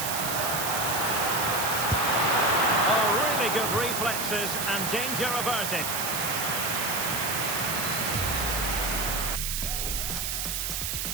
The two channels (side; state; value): right; noise; hiss, 1 dB below the sound